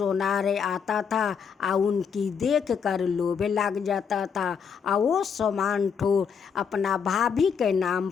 आता था और उनकी देख कर लोभ लग जाता था, और वो सामान ठो अपना भाभी के नाम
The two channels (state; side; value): quieter; right; 6.7 dB